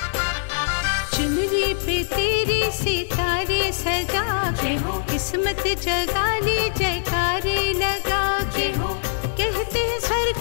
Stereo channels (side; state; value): right; silent; digital silence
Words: चुनरी पे तेरी सितारे सजा के, किस्मत जगा ली जयकारे लगा के। कहते हैं स्वर्ग